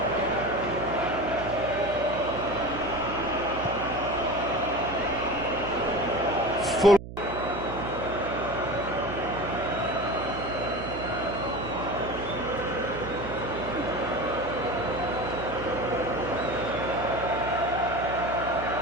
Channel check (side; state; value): right; noise; hum, 11 dB below the sound